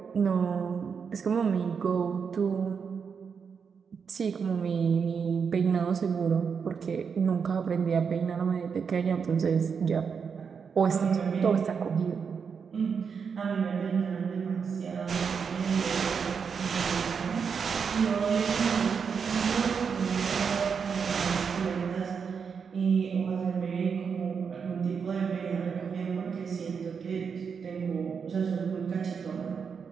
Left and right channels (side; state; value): left; quieter; 6.2 dB